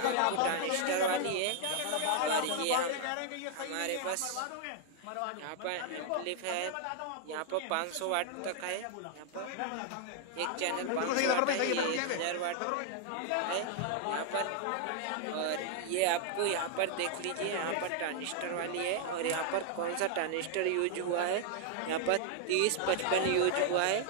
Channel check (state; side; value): different; both; correlation 0.00